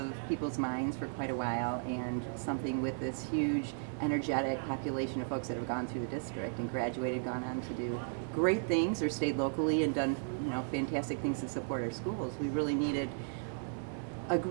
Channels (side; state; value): left; silent; digital silence